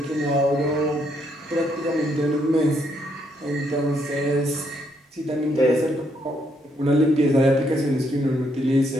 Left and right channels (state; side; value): normal; both; correlation 0.74